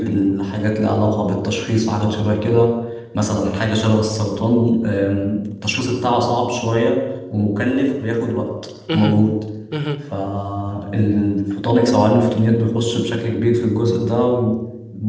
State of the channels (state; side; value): identical; both; correlation 1.00